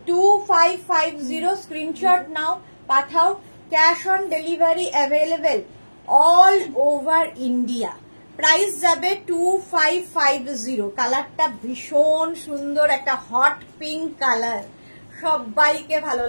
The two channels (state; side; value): inverted; both; correlation -1.00